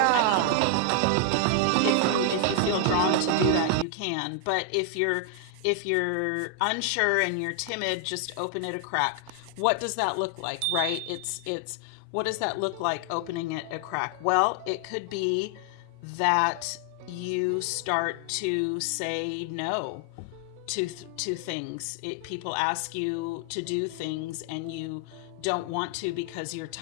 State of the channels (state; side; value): different; both; correlation 0.00